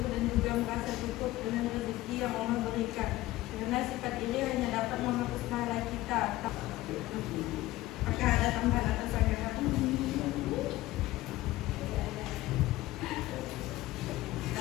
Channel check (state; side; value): quieter; right; 17.0 dB